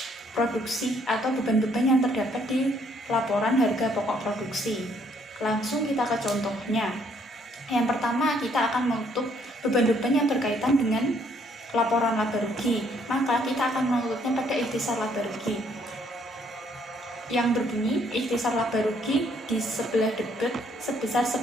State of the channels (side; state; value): both; normal; correlation 0.67